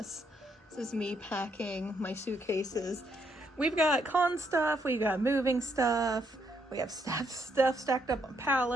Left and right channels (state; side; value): normal; both; correlation 0.74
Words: This is me packing my suitcases. We've got con stuff, we've got moving stuff, we have stuff stacked up on